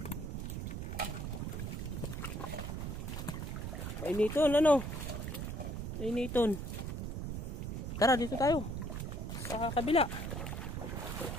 Painiton, ano? Painiton. Tara, dito tayo. Sa kabila.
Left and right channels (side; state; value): right; noise; rumble, 4 dB below the sound